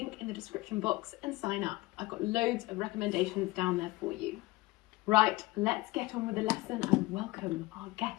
in the description box and sign up. I've got loads of recommendations down there for you. Right, let's get on with the lesson and welcome our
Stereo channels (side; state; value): right; quieter; 19.9 dB